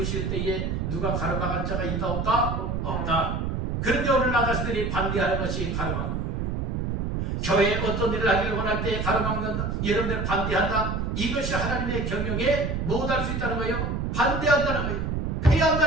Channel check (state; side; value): noise; right; rumble, 1 dB below the sound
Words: 때에 누가 가로막을 자가 있다 없다? 없다. 그런데 오늘 나 자신들이 반대하는 것이 가로막는 거예요. 교회에 어떤 일을 하기를 원할 때 가로막는다. 여러분들 반대한다. 이것이 하나님의 경영에 못할 수 있다는 거예요. 반대한다는 거예요.